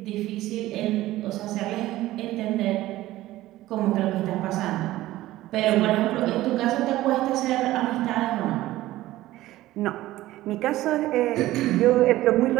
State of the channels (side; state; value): left; quieter; 16.1 dB